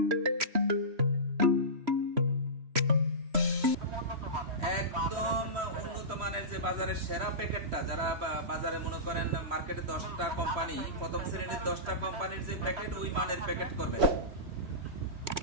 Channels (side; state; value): left; late; 3.1 ms